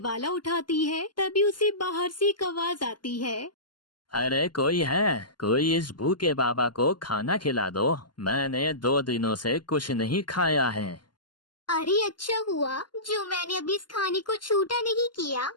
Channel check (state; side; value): late; right; 0.71 ms